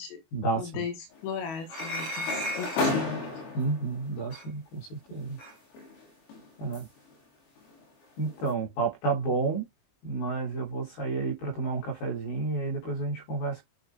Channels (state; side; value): late; right; 22 ms